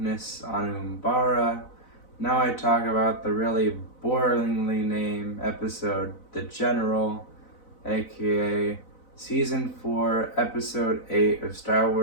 on Umbara, now I talk about the really boringly named episode, The General, aka Season 4, Episode 8 of Star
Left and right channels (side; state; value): right; late; 4.0 ms